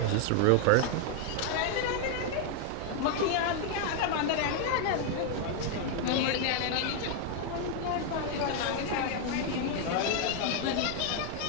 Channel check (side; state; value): both; different; correlation 0.00